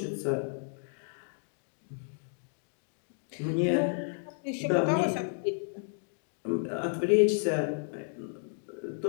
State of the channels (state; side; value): silent; right; digital silence